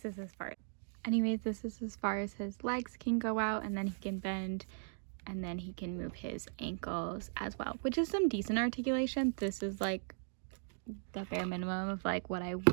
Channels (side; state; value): left; silent; digital silence